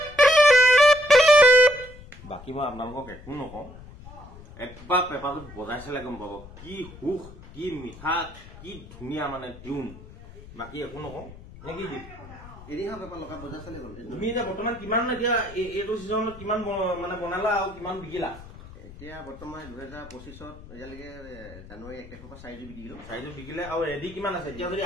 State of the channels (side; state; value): left; noise; rumble, 17 dB below the sound